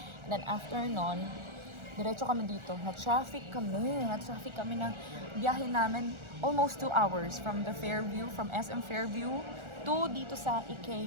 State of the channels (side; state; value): left; late; 1.4 ms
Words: And then, after nun, diretso kami dito. Na-traffic kami na biyahe namin almost 2 hours from the Fairview, from SM Fairview to dito sa